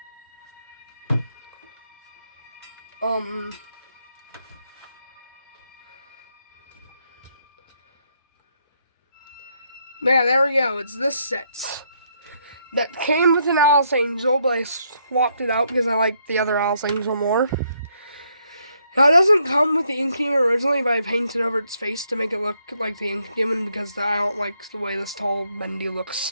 Yeah, there we go. It's this set. That came with an Alice Angel, but I swapped it out because I like the other Alice Angel more. Now, it doesn't come with the ink demon originally, but I painted over its face to make it look like the ink demon because I don't like the way this tall Bendy looks.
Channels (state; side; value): inverted; both; correlation -0.74